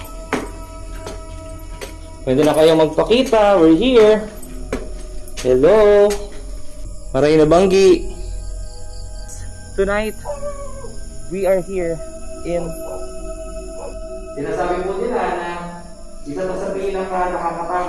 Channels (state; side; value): identical; both; correlation 1.00